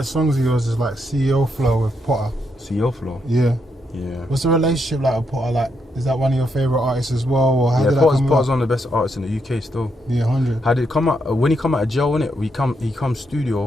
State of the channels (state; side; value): normal; both; correlation 0.79